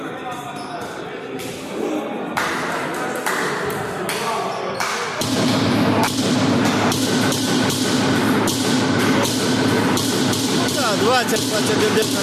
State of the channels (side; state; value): both; identical; correlation 1.00